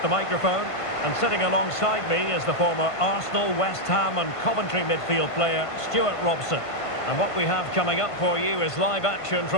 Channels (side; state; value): right; late; 1.5 ms